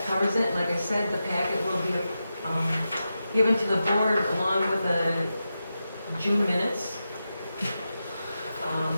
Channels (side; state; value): both; inverted; correlation -0.90